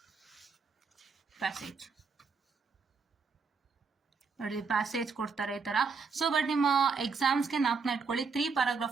ಪ್ಯಾಸೇಜ್ ನೋಡಿ, ಪ್ಯಾಸೇಜ್ ಕೊಡ್ತಾರೆ ಈ ತರ. ಸೊ ಬಟ್ ನಿಮ್ಮ ಎಕ್ಸಾಮ್ಸ್ಗೆ ನಾಲ್ಕನ್ನ ಇಟ್ಕೊಳ್ಳಿ, 3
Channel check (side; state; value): left; quieter; 5.0 dB